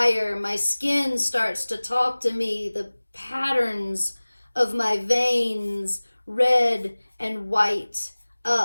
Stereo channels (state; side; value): inverted; both; correlation -1.00